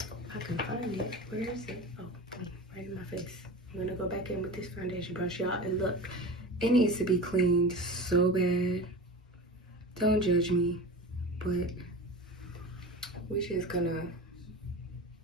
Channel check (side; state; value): both; normal; correlation 0.31